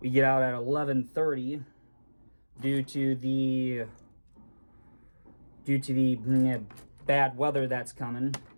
11:30 due to the bad weather that's coming,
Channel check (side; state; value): both; inverted; correlation -1.00